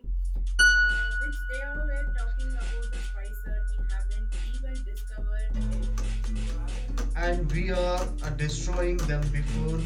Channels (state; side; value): identical; both; correlation 1.00